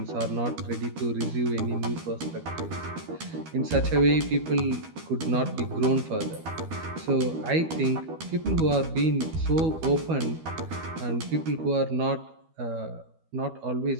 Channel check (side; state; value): left; late; 12 ms